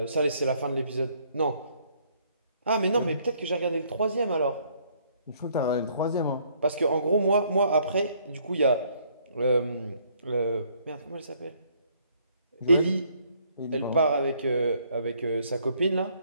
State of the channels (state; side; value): inverted; both; correlation -0.65